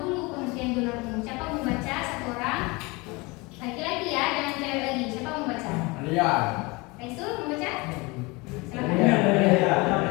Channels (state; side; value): quieter; right; 25.3 dB